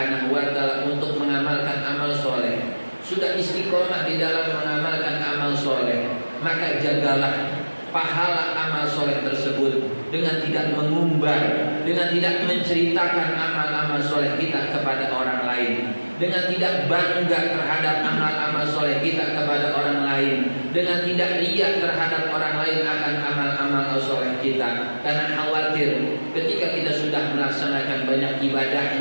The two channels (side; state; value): both; inverted; correlation -1.00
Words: wa ta'ala untuk mengamalkan amal soleh, sudah istiqomah di dalam mengamalkan amal soleh, maka jagalah pahala amal soleh tersebut dengan tidak mengumbar, dengan tidak menceritakan amal-amal soleh kita kepada orang lain, dengan tidak bangga terhadap amal-amal soleh kita kepada orang lain, dengan tidak riya terhadap orang lain akan amal-amal soleh kita. Karena khawatir ketika kita sudah melaksanakan banyak